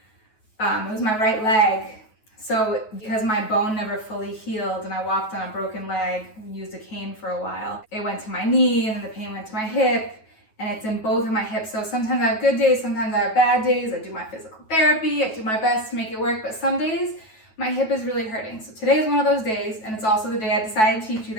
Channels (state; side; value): late; right; 9.3 ms